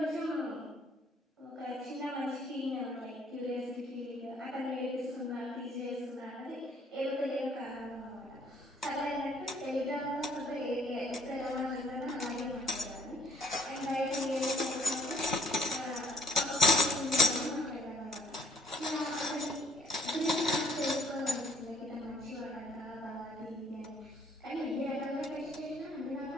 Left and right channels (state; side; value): normal; both; correlation 0.63